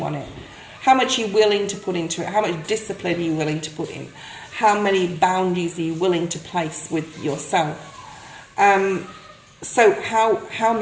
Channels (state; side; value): identical; both; correlation 1.00